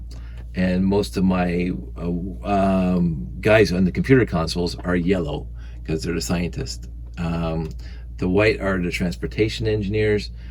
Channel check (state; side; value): identical; both; correlation 1.00